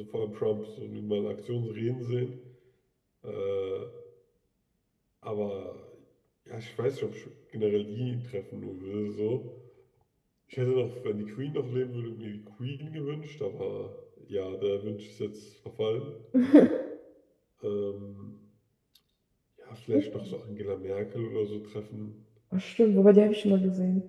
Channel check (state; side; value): identical; both; correlation 1.00